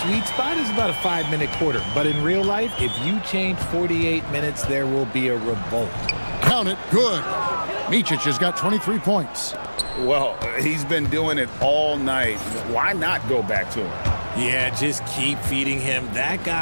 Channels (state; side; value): inverted; both; correlation -1.00